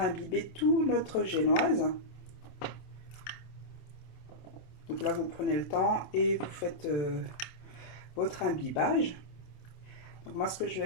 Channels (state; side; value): late; right; 27 ms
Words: tout notre génoise. Donc là, vous prenez le temps et vous faites votre imbibage. Donc moi, ce que je